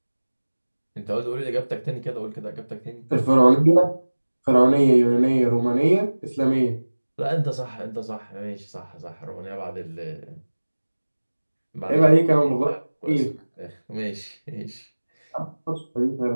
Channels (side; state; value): both; inverted; correlation -1.00